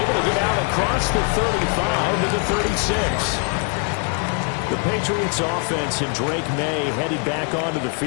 to get out across the 35 to the 36. The Patriots offense and Drake May headed back onto the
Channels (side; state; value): right; quieter; 39.2 dB